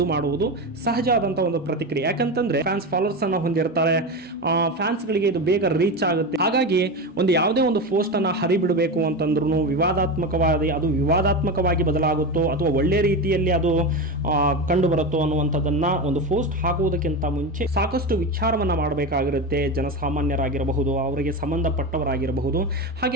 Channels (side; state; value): both; normal; correlation 0.20